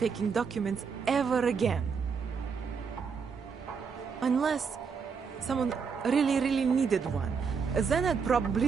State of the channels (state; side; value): quieter; left; 5.8 dB